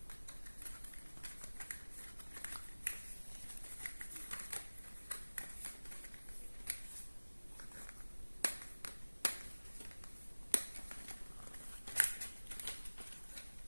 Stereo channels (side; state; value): both; inverted; correlation -1.00